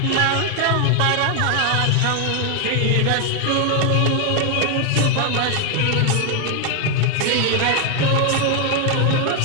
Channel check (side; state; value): both; different; correlation 0.00